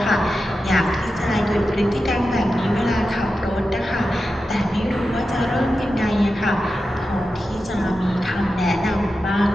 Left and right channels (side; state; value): both; normal; correlation 0.91